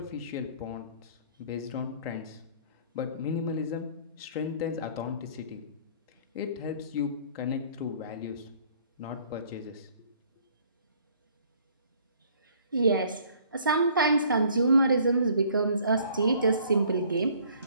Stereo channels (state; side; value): inverted; both; correlation -0.57